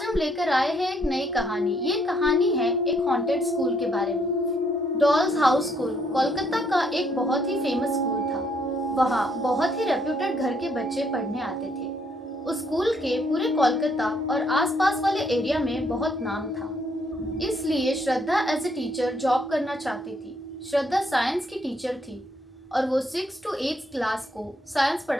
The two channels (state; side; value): normal; both; correlation 0.70